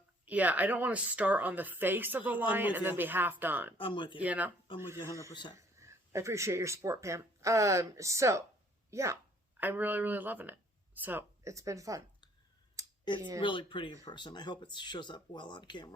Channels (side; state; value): both; normal; correlation 0.60